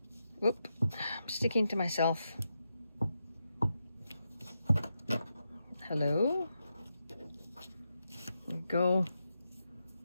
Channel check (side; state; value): both; inverted; correlation -0.86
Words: Whoop, I'm sticking to myself. Hello. There we go.